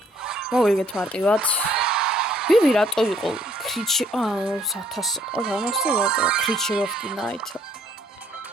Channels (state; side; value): normal; both; correlation 0.64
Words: მოვიგეთ მარტივად. ბიბი რატო იყო? Creature of the Night.